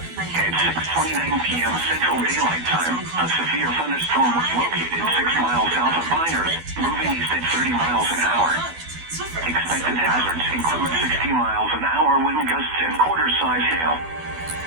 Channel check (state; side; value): late; left; 12 ms